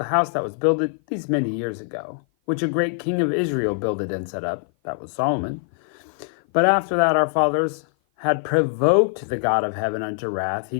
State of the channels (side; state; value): right; silent; 56 dB below the other